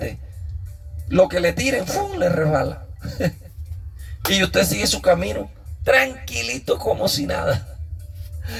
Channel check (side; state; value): both; identical; correlation 1.00